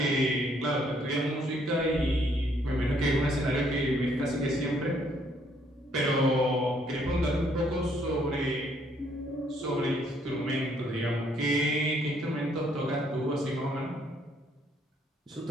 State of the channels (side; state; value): both; normal; correlation 0.67